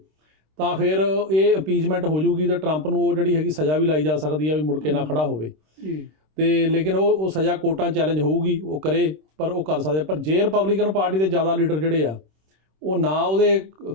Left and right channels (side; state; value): left; late; 26 ms